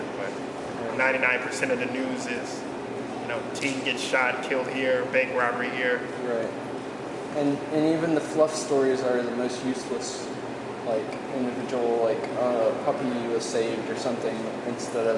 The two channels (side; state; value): both; identical; correlation 1.00